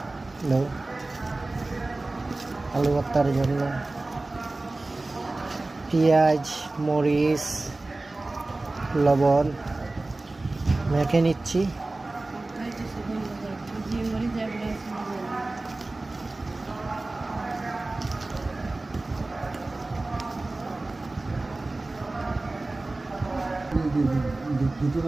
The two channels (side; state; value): left; quieter; 3.0 dB